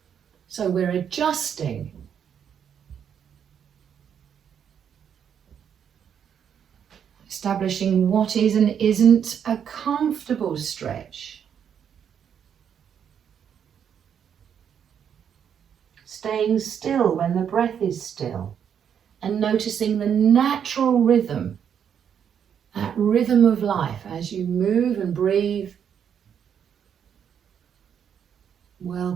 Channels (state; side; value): quieter; left; 8.2 dB